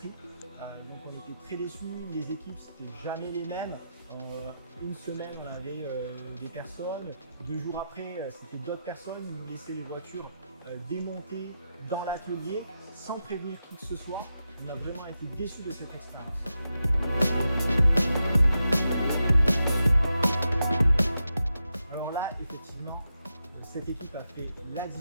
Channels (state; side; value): inverted; both; correlation -0.87